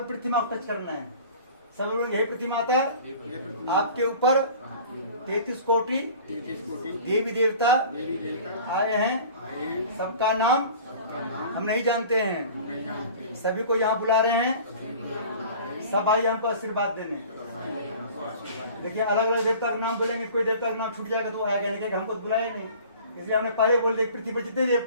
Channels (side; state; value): both; inverted; correlation -0.44